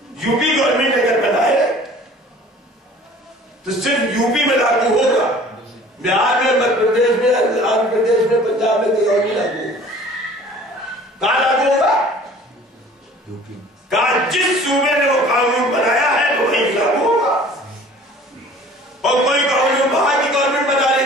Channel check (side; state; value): both; normal; correlation 0.48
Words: یو پی گورنمنٹ اگر بنائے تو صرف یو پی میں لاگو ہوگا، بہار میں، مدھیہ پردیش میں، آندھرا پردیش میں، پنجاب میں کہیں اور نہیں لاگو ہوگا۔ کہاں لاگو ہوگا؟ کہاں جس صوبے نے وہ قانون بنایا ہے وہ وہیں لاگو ہوگا، اور کوئی قانون وہاں کی گورنمنٹ بنا رہی